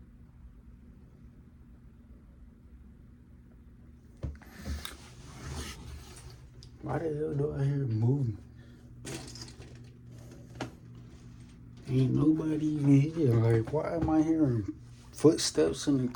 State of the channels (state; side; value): identical; both; correlation 1.00